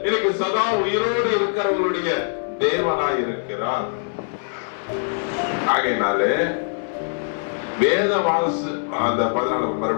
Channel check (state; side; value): silent; right; 64 dB below the other